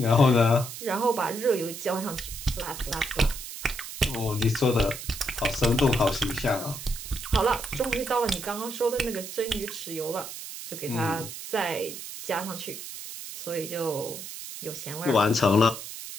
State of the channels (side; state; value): right; noise; hiss, 10 dB below the sound